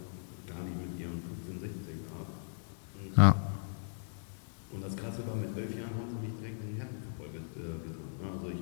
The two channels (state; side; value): silent; right; digital silence